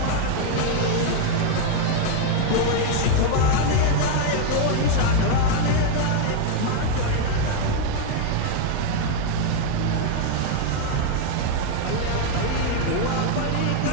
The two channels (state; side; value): different; both; correlation 0.01